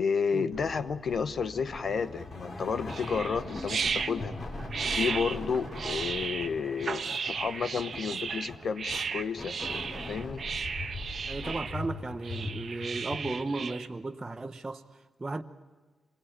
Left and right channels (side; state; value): both; normal; correlation 0.81